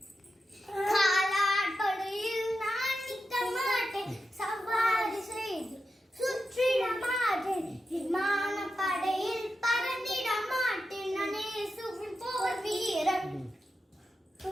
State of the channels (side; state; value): both; normal; correlation 0.89